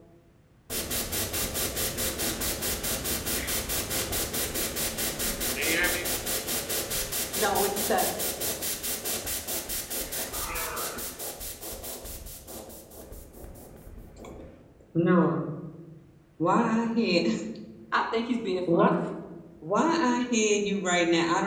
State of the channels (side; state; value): both; identical; correlation 1.00